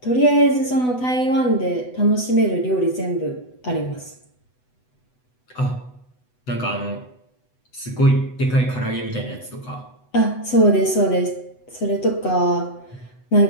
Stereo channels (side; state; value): right; late; 8.0 ms